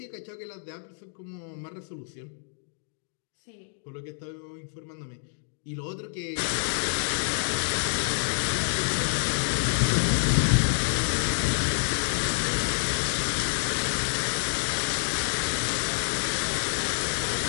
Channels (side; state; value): right; silent; digital silence